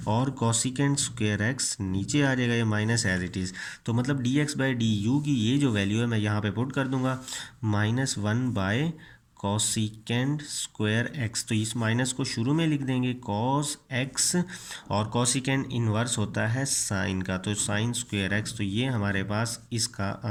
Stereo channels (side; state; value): both; identical; correlation 1.00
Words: और कॉसिकेंट स्क्वायर एक्स नीचे आ जाएगा, ये माइनस एज इट इज़। तो मतलब D x by d you की ये जो वैल्यू है मैं यहाँ पे पुट कर दूंगा, minus one bye cosecant square x. तो इस माइनस को शुरू में लिख देंगे कॉस एक्स, और कॉसिकेंट इन्वर्स होता है साइन का, तो साइन स्क्वायर एक्स। तो ये हमारे पास इसका